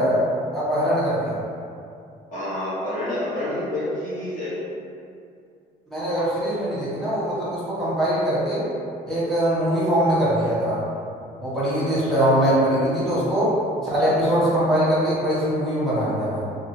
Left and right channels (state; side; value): normal; both; correlation 0.48